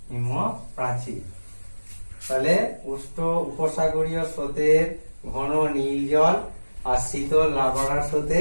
হিমপ্রাচীর। তাহলে উষ্ণ উপসাগরীয় স্রোতের ঘন নীল জল আর শীতল লাব্রাডার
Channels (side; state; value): both; inverted; correlation -1.00